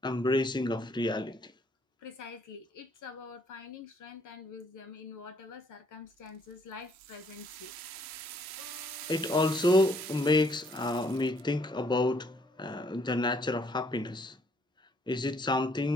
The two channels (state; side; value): normal; both; correlation 0.66